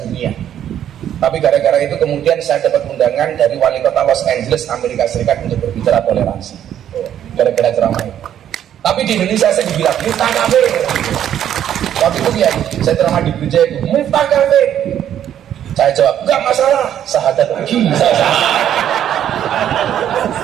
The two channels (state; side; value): quieter; left; 10.4 dB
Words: Tapi gara-gara itu kemudian saya dapat undangan dari wali kota Los Angeles, Amerika Serikat untuk berbicara toleransi. Gara-gara ceramah itu. Tapi di Indonesia saya dibilang, Miftah kafir. Waktu itu ya, saya ceramah di gereja itu, Miftah kafir. Saya jawab, enggak masalah, sahadat lagi.